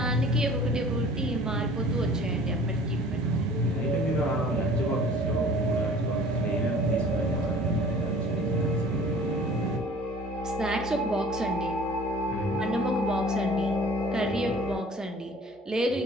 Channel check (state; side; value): normal; both; correlation 0.48